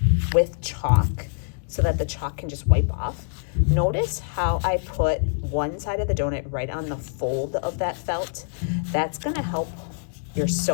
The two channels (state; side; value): silent; right; digital silence